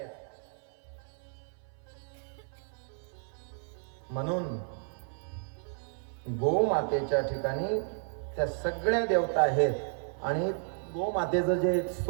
म्हणून गोमातेच्या ठिकाणी त्या सगळ्या देवता आहेत आणि गोमातेचं जे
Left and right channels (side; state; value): left; silent; 56 dB below the other